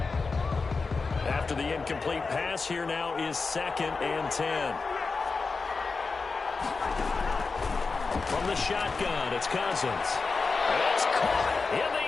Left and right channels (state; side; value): quieter; right; 4.3 dB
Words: After the incomplete pass, here now is 2nd and 10. From the shotgun, it's Cousins. It's caught in the